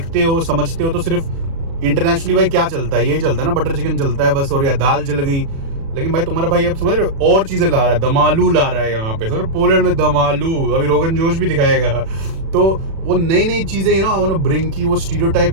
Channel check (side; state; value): left; late; 36 ms